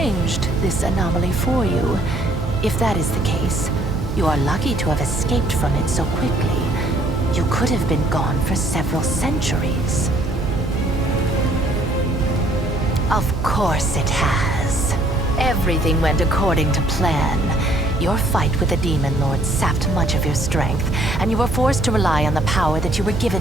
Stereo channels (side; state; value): right; noise; hum, 8 dB below the sound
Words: this anomaly for you. If that is the case, you are lucky to have escaped from it so quickly. You could have been gone for several centuries. Of course it has. Everything went according to plan. Your fight with the Demon Lord sapped much of your strength, and you were forced to rely on the power that you were